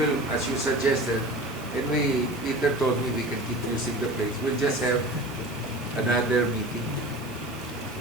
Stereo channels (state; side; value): normal; both; correlation 0.36